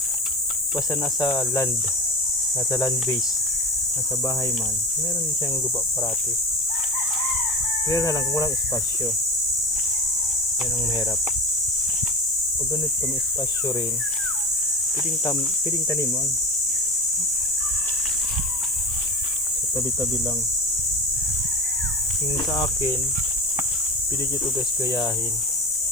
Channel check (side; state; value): both; normal; correlation 0.31